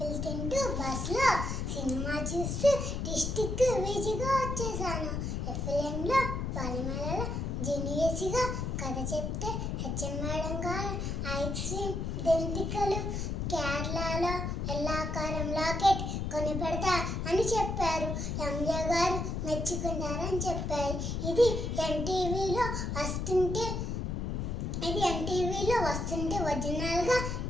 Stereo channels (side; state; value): left; noise; rumble, 2 dB below the sound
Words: తింటూ బస్సులో సినిమా చూస్తూ డిస్టిక్ విజిగా వచ్చేసాను. ఎఫ్ఎంలో పనిమేళలో జీనియస్గా కథ చెప్తే హెచ్ఎం మేడం గారు ఐస్ క్రీమ్ దెంతికలు కేరళలో ఎల్లాకారం లాకెట్ కొని పెడతా అని చెప్పారు. ఎంజే గారు మెచ్చుకున్నారని చెప్పారు. ఇది ఎన్టీవీలో వస్తుంటే ఒరిజినల్గా